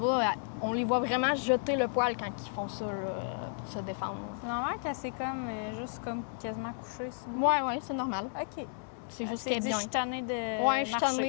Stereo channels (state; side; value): silent; right; digital silence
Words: On les voit vraiment jeter le poil quand ils font ça, là, pour se défendre. C'est normal qu'elle s'est comme, juste comme quasiment couchée. sinon. Ouais, c'est normal. OK. C'est juste Elle qu'elle s'est est dit, bien. je suis tannée de Ouais, je suis marcher.